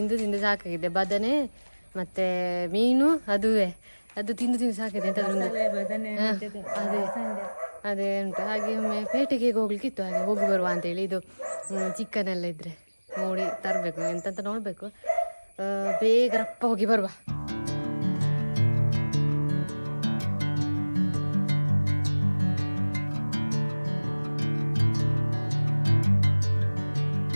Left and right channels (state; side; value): inverted; both; correlation -1.00